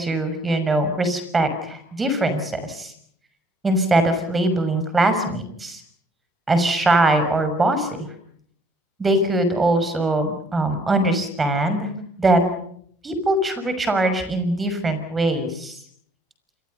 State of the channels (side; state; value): both; normal; correlation 0.63